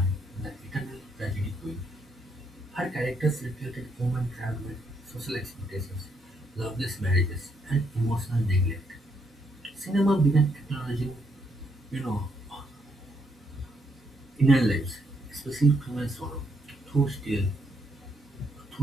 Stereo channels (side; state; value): both; normal; correlation 0.75